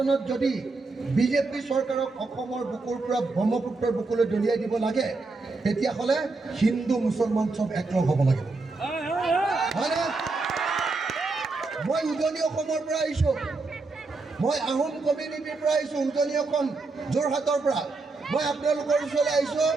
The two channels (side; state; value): left; quieter; 3.7 dB